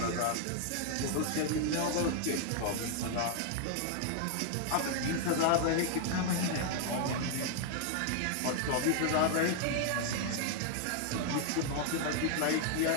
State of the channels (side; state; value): both; different; correlation 0.00